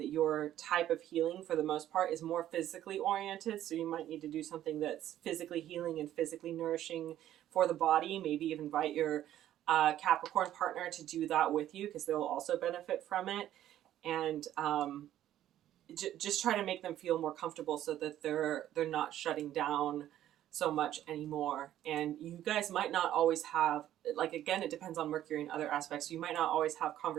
that your type of healing, for the most part, is more physically oriented. So you might need to do something that's physically healing and physically nourishing for the body. Maybe even invite your Capricorn partner to do that with you, because they'll also benefit from it. And just try to make them feel more comfortable so that they're not shutting down so much anymore. And you guys might not always have, again, it depends on Mercury and other aspects. You might not always have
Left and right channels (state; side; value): quieter; left; 12.3 dB